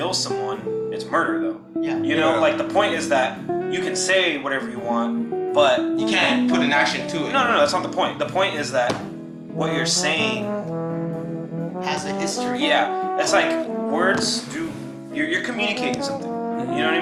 someone. It's murder though. Yeah. You know, Yeah. like the point is that you can say whatever you want, but You can't put an action to it. no, that's not the point. The point is that what you're saying, Has a history. yeah, it's like words do. You're communicating something. You know what I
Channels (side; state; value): both; identical; correlation 1.00